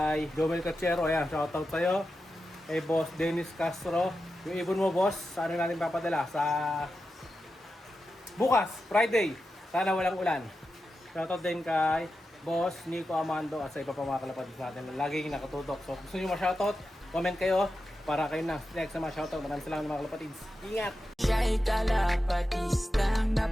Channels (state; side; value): normal; both; correlation 0.90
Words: Jomel Cachero. Ayan, shoutout sa'yo. Kay Boss Dennis Castro. Yung ibon mo, boss, saan natin papadala? Sa bukas, Friday. Sana walang ulan. Shoutout din kay Boss Nico Amando at sa iba pa mga kalapatids natin. Laging nakatutok. So, gusto nyo ma-shoutout? Comment kayo para kayo na next sa mga shoutout. Maraming salamat mga kalapatids. Ingat! Siya'y kalapatistang